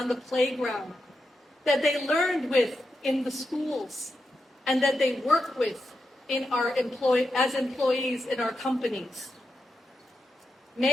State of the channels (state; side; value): normal; both; correlation 0.86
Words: the playground, that they learned with in the schools, and that they work with as employees in our companies.